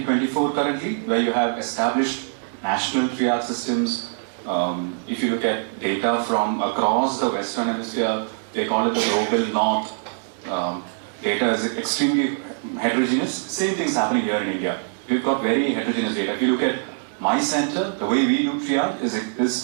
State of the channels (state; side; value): silent; left; digital silence